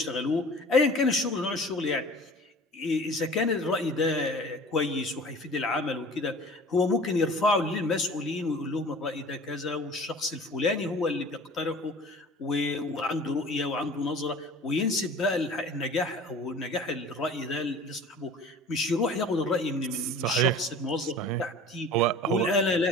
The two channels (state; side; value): normal; both; correlation 0.43